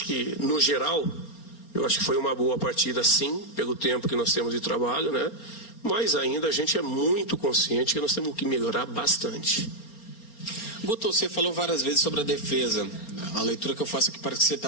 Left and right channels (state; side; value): late; right; 4.3 ms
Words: que, no geral, eu acho que foi uma boa partida, sim, pelo tempo que nós temos de trabalho, né? Mas ainda a gente é muito consciente que nós temos que melhorar bastante. Guto, você falou várias vezes sobre a defesa. A leitura que eu faço aqui parece que você